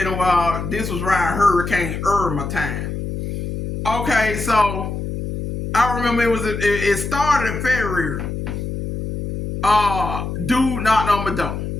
a while. This was around Hurricane Irma time. Okay, so I remember it started in February. Dude knocked on my door.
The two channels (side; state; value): left; noise; hum, 5 dB below the sound